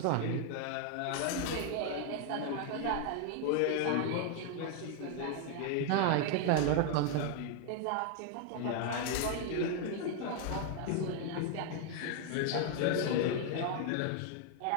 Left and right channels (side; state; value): both; different; correlation 0.00